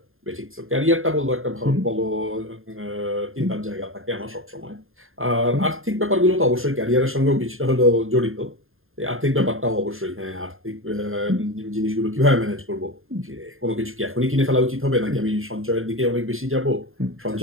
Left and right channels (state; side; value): late; left; 0.60 ms